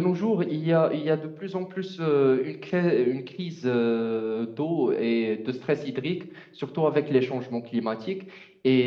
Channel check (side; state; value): both; identical; correlation 1.00